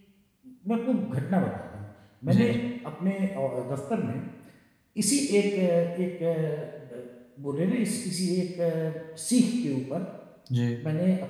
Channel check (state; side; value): identical; both; correlation 1.00